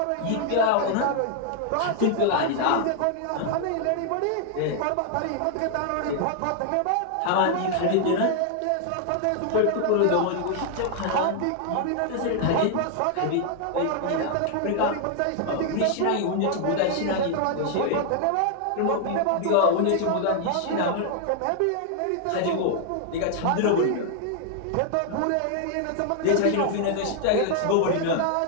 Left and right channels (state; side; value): different; both; correlation 0.00